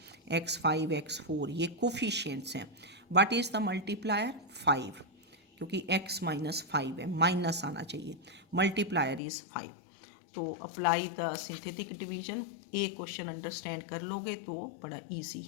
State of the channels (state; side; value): drops out; right; at 9.2 s